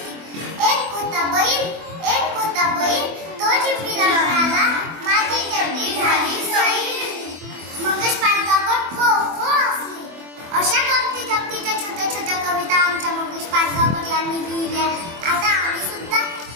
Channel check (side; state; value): left; late; 24 ms